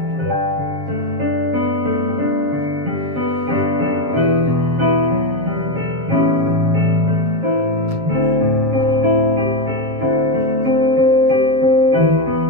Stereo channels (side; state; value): left; late; 7.3 ms